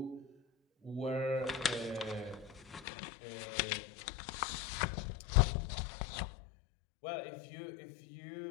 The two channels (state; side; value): drops out; right; at 2.9 s